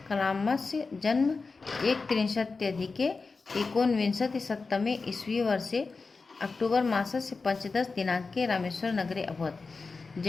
कलामस्य जन्म 1330 एकोनविंशतिशततमे ईस्वी वर्षे अक्टूबर मासस्य पंचदश दिनांके रामेश्वर नगरे अभवत।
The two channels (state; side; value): quieter; right; 4.2 dB